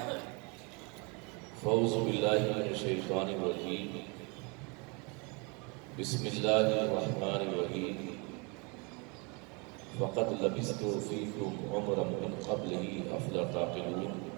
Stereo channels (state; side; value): quieter; left; 31.2 dB